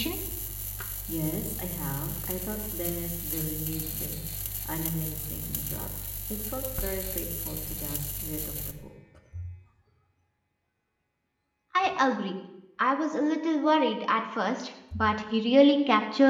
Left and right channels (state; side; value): identical; both; correlation 1.00